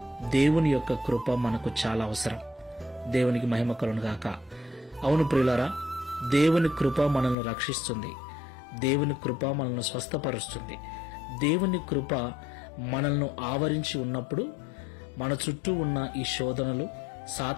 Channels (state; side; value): drops out; right; at 7.4 s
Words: దేవుని యొక్క కృప మనకు చాలా అవసరం. దేవునికి మహిమ కలుగును గాక. అవును ప్రియులారా, దేవుని కృప మనల్ని రక్షిస్తుంది. దేవుని కృప మనల్ని స్వస్థపరుస్తుంది. దేవుని కృప మనల్ని ఆవరించి ఉన్నప్పుడు మన చుట్టూ ఉన్న ఈ శోధనలు,